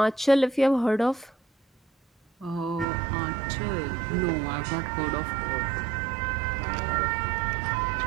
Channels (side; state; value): left; drops out; at 2.9 s